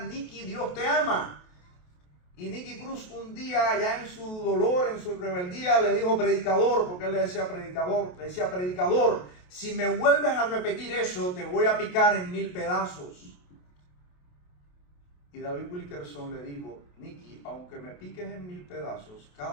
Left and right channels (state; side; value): late; right; 28 ms